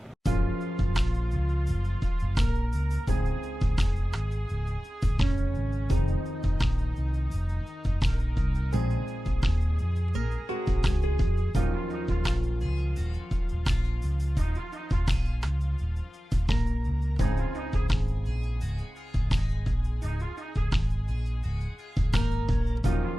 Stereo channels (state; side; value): normal; both; correlation 0.96